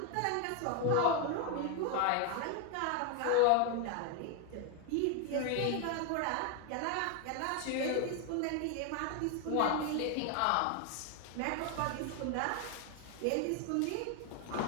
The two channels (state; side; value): different; both; correlation 0.01